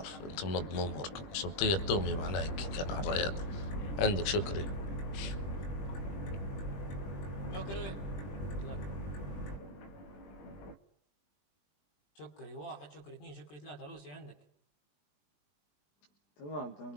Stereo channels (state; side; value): late; right; 20 ms